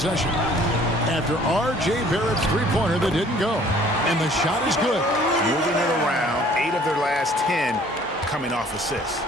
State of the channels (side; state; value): both; normal; correlation 0.55